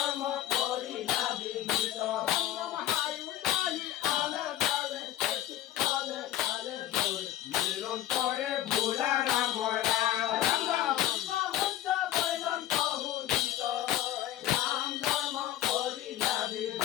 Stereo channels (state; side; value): quieter; right; 13.0 dB